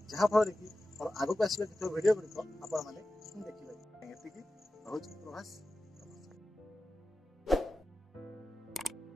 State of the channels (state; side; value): normal; both; correlation 0.94